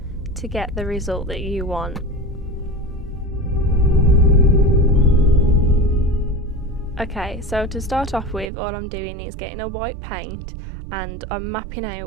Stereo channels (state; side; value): drops out; left; at 8.5 s